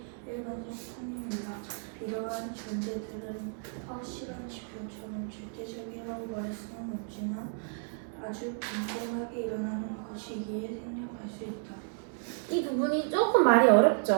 일반적 편입니다. 이러한 존재들은 확실한 지표처럼 절대적이라고 말할 수는 없지만 아주 빈번하게 일어나는 것이기에 생략할 수 있다. 이 부분이 조금 말이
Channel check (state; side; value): silent; left; 56 dB below the other